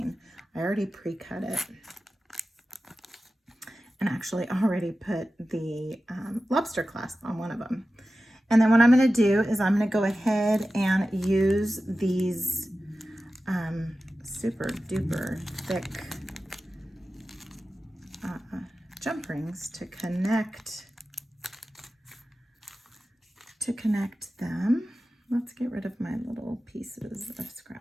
I already pre-cut it. And actually already put the lobster clasp on one of them. And then what I'm going to do is I'm going to go ahead and use these super duper thick jump rings to connect them. Let's get rid of my little pieces of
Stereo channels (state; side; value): normal; both; correlation 0.94